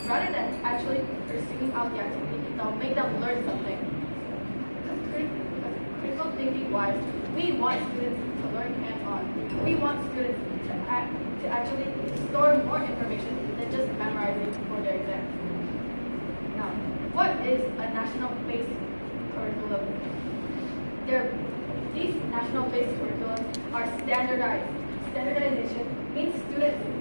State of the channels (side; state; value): both; inverted; correlation -1.00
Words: rather than actually pursuing out the activity that will make them learn something. Because critical thinking wise, we want students to learn hands-on. We want students to actually store more information than just memorizing for their exams. Now, what is a national-based curriculum? These national-based curriculums are standardized. Standardization means students